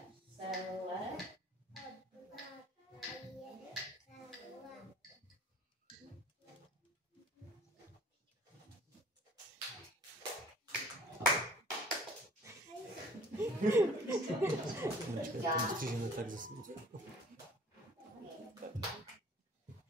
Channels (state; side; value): normal; both; correlation 0.50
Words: celé. Střížeme tak zase.